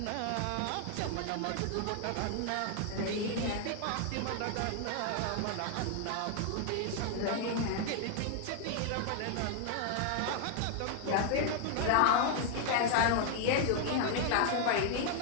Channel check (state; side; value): different; both; correlation 0.00